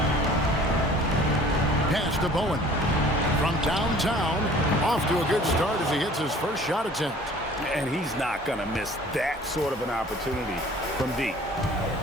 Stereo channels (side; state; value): both; normal; correlation 0.50